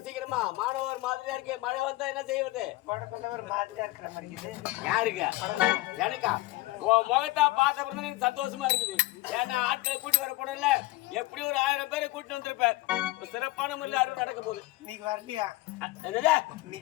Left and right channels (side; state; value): right; quieter; 19.5 dB